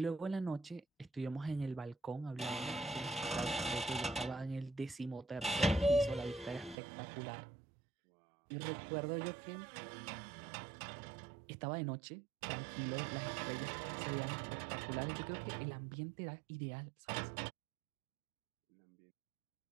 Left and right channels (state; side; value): drops out; left; at 6.8 s